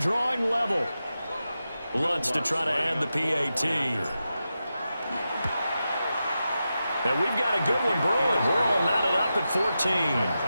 level. Lutz to try to add the PAT. And we've got a good one brewing. We're all knotted up at 14. That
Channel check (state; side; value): inverted; both; correlation -0.90